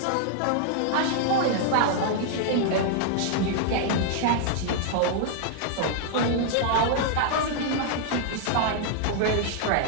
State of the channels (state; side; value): different; both; correlation -0.01